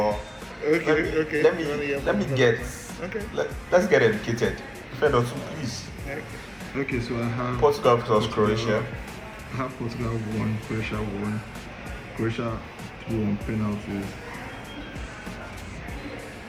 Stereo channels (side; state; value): both; identical; correlation 1.00